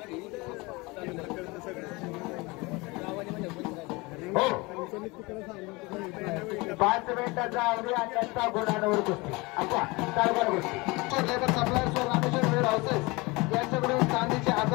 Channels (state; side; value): quieter; right; 24.6 dB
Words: हो 5 मिनिटाचा अवधी आणि त्यांचा गुणांवर कुस्ती अच्छा चालणार गोष्टी लेबर सप्लायर्स व रामेश्वर वेळ हाऊसेस यांच्याकडून चांदीचे